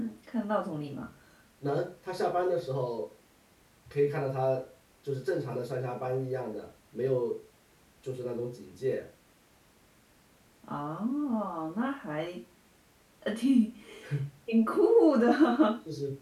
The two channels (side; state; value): both; identical; correlation 1.00